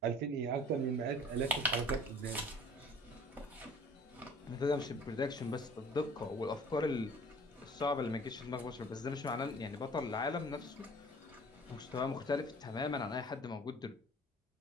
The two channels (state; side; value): normal; both; correlation 0.49